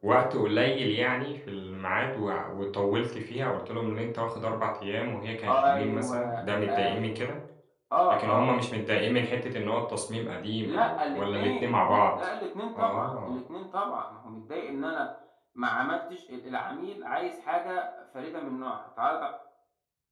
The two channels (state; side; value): identical; both; correlation 1.00